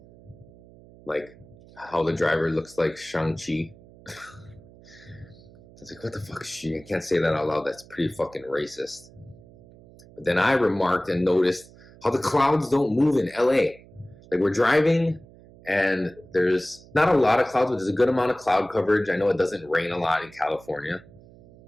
like how the driver looks like Shang-Chi. I was like, what the fuck is she? I can't say that out loud. That's pretty fucking racist. But then I remarked and noticed how the clouds don't move in LA. Like, we're driving and there's not a lot of clouds, but there's a good amount of cloud coverage. I know it doesn't rain a lot in California,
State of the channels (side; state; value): right; noise; hum, 23 dB below the sound